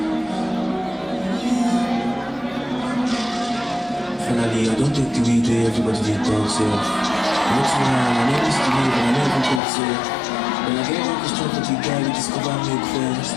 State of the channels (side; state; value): right; drops out; at 9.6 s